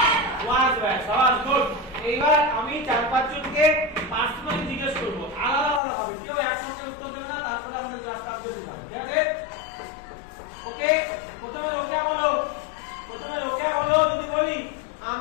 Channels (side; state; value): right; drops out; at 5.8 s